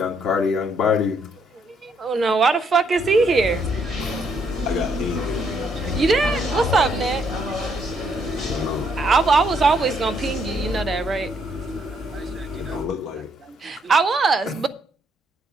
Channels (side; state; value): both; normal; correlation 0.72